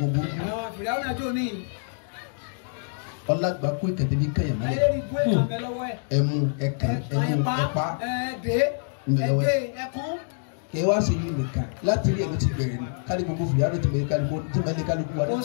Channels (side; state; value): right; silent; digital silence